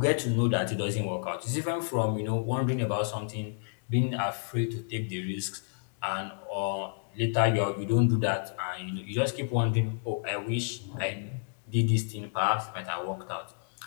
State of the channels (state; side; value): silent; right; digital silence